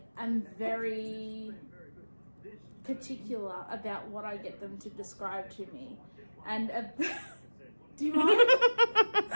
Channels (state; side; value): inverted; both; correlation -1.00